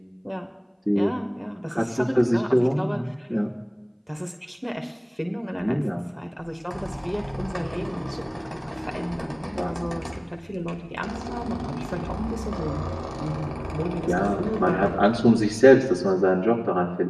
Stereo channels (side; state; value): both; identical; correlation 1.00